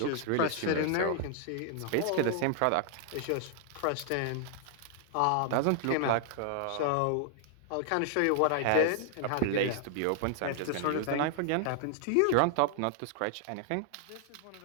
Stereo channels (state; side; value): different; both; correlation 0.00